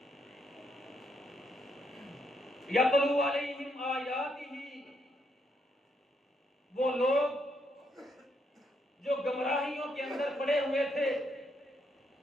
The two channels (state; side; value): normal; both; correlation 0.76